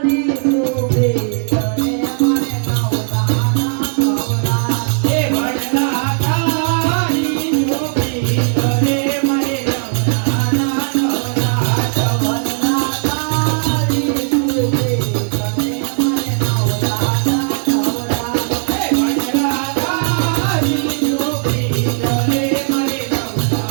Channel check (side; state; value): left; silent; 66 dB below the other